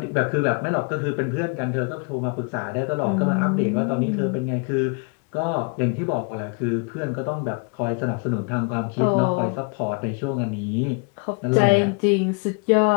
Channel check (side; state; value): right; quieter; 35.2 dB